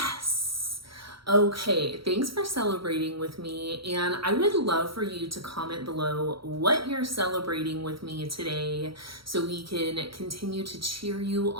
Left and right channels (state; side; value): late; left; 0.75 ms